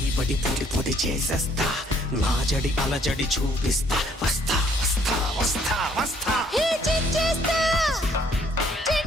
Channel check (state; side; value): normal; both; correlation 0.64